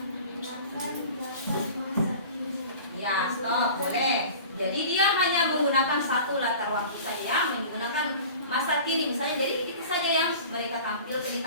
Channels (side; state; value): both; inverted; correlation -0.40